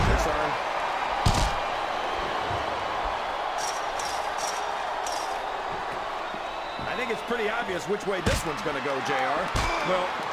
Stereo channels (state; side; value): identical; both; correlation 1.00